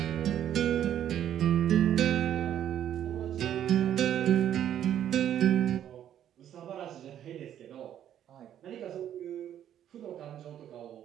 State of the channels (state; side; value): quieter; left; 10.6 dB